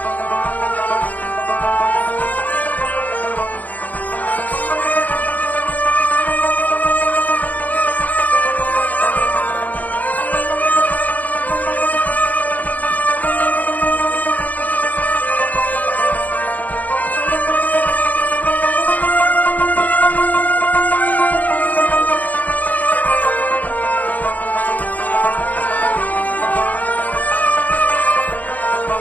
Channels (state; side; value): late; right; 0.077 ms